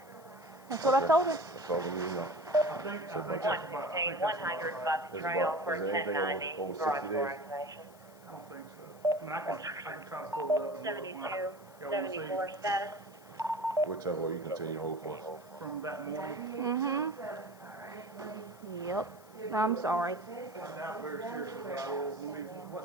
That's what I told him. That's all we need to know. I think that's about. 116, 100 Buck Trail for Is there anything 1090. over 60 Garage door days? activation. I don't think so. I mean, I can try to pull it up. And 72, look. Y'all wanna see 74 status. Whichever way you continue to hold for us. from that morning? Yep. I'm sorry. I doubt very seriously, but I will.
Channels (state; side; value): noise; left; hiss, 25 dB below the sound